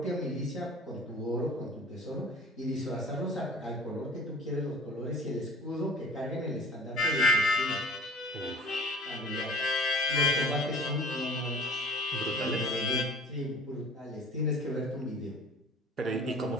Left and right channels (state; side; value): normal; both; correlation 0.44